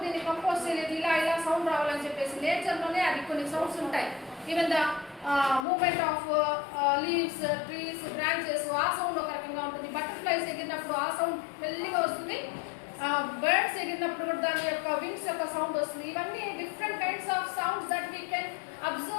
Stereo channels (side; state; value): right; drops out; at 5.7 s